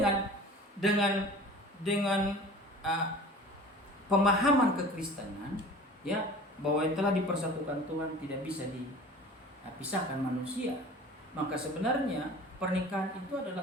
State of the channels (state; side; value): normal; both; correlation 0.42